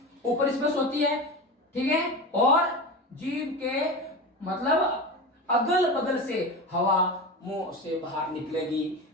ऊपर स्पर्श होती है। ठीक है, और जीभ के मतलब अगल बगल से हवा मुंह से बाहर निकलेगी,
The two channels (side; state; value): both; normal; correlation 0.25